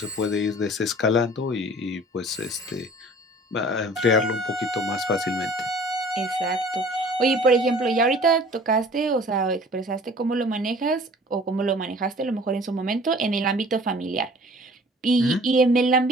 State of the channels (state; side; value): normal; both; correlation 0.48